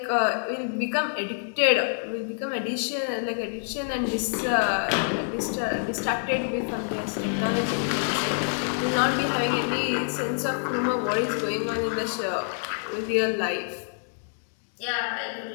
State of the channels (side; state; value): right; silent; digital silence